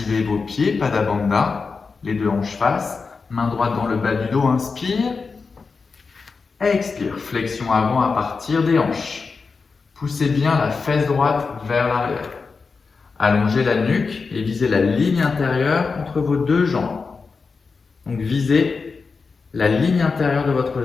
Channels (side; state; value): right; quieter; 4.7 dB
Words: vos pieds, Pada Bandha, les deux hanches face. Main droite dans le bas du dos, inspire. Expire, flexion avant à partir des hanches. Poussez bien la fesse droite vers l'arrière. Allongez la nuque et visez la ligne intérieure entre vos deux jambes. Donc visez la ligne intérieure de votre